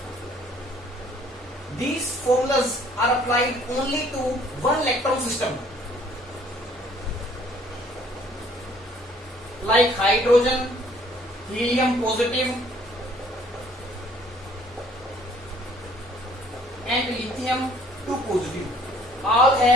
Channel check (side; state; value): both; normal; correlation 0.58